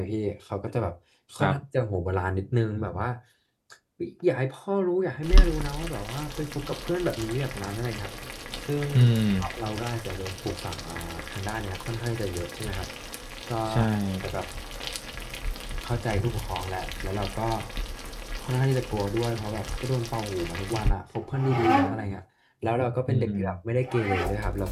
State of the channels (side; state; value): both; identical; correlation 1.00